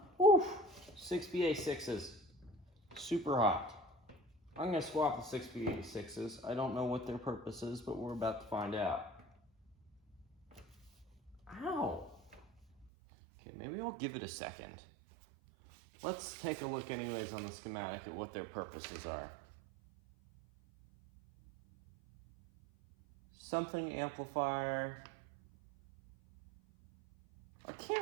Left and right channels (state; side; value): drops out; left; at 12.9 s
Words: Oof! 6BA6s. Super hot. I'm going to swap the 6BA6s. I don't know what their purpose is, but we're about to find out. Ow! Okay, maybe I'll give it a second. Let's take a look anyways on the schematic at what their purposes are. Something amplifier. I